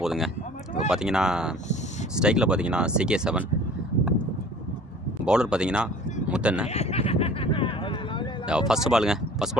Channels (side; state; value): both; normal; correlation 0.47